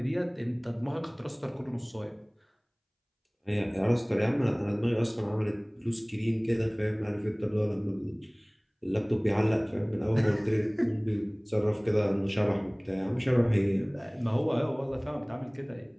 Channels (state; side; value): identical; both; correlation 1.00